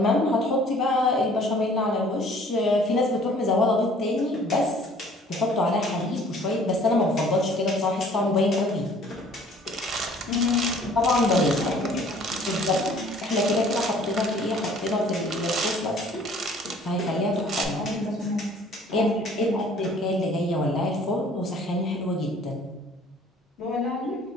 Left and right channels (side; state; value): both; normal; correlation 0.54